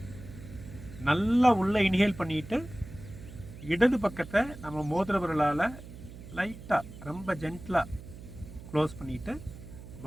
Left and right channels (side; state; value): right; noise; hum, 14 dB below the sound